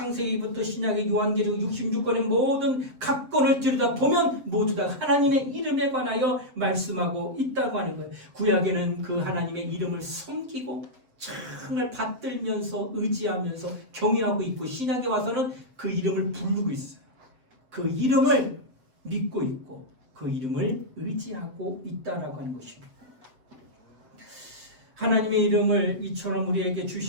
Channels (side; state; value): left; late; 7.7 ms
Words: 신약의 요한계시록 66권의 모든 각 권을 들여다보면 모두 다 하나님의 이름에 관하여 말씀하고 있다고 하는 거예요. 구약에는 그 하나님의 이름을 섬기고 정말 받들면서 의지하면서 경외하고 있고 신약에 와서는 그 이름을 부르고 있어요. 그 이름을 믿고 있고 그 이름을 의지하고 있다라고 하는 것입니다. 하나님의 이름을 이처럼 우리에게